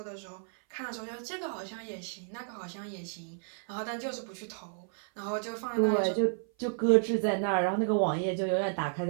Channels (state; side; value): silent; left; 55 dB below the other